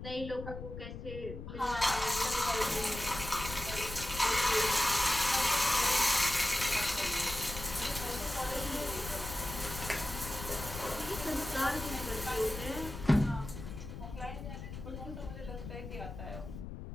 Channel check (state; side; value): noise; left; rumble, 9 dB below the sound